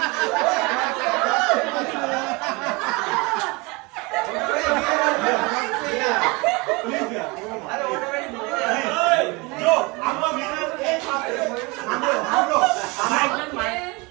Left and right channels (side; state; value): left; quieter; 26.3 dB